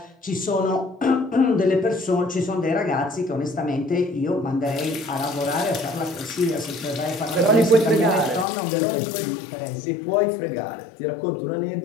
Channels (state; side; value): drops out; right; at 8.5 s